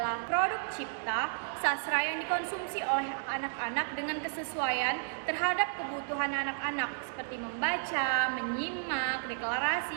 produk cipta, sastra yang dikonsumsi oleh anak-anak dengan kesesuaian terhadap kebutuhan anak-anak seperti membaca, menyimak,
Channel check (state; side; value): silent; left; digital silence